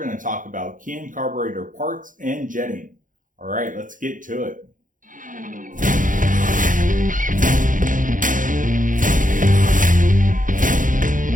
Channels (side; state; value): left; late; 0.38 ms